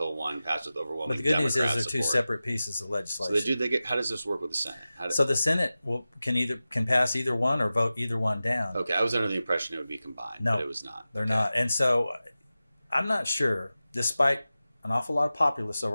one passed with overwhelming But the good Democrat news is they're two support. separate pieces of legislation. So how does this work with the Senate? So the Senate can pass either one or vote either one down. Okay, I was under the impression it would be combined, but it was not. They're not. And so I'm not sure, despite an awful lot of populists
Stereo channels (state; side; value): inverted; both; correlation -0.95